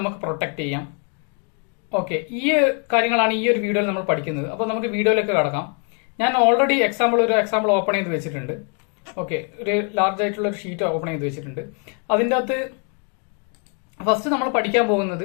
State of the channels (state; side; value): quieter; right; 38.8 dB